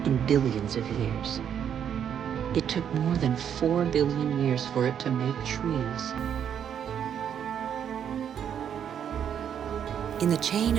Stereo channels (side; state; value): left; quieter; 8.7 dB